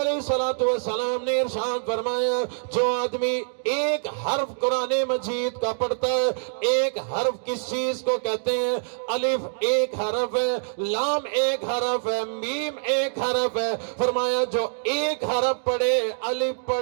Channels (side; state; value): left; silent; digital silence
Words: الصلوۃ والسلام نے ارشاد فرمایا, جو آدمی ایک حرف قرآن مجید کا پڑھتا ہے, ایک حرف کس چیز کو کہتے ہیں؟ الف ایک حرف ہے, لام ایک حرف ہے, میم ایک حرف ہے. فرمایا جو ایک حرف پڑھے, الف